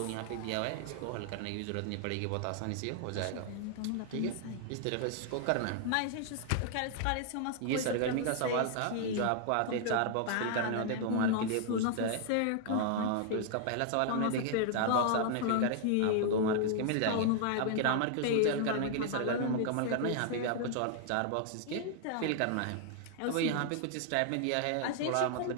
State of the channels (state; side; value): different; both; correlation 0.00